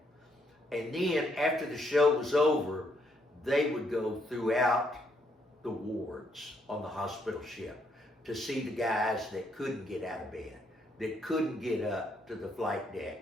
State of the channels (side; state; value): both; normal; correlation 0.73